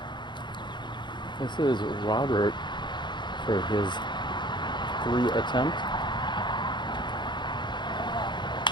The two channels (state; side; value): late; right; 0.22 ms